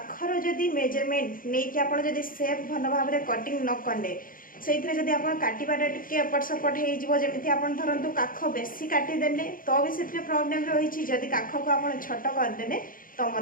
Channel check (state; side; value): late; right; 0.40 ms